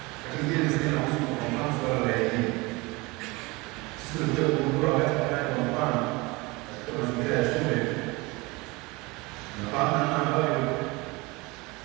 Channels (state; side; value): quieter; left; 24.3 dB